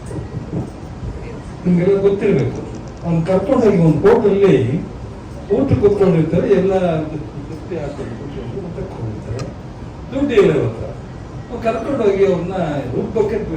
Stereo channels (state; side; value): identical; both; correlation 1.00